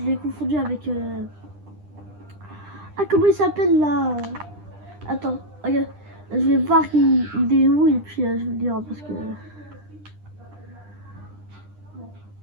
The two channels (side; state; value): left; late; 9.9 ms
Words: l'ai confondu avec... Ah, comment il s'appelle là? Attends, regarde. Je vais voir il est où et puis je vais le dire parce que...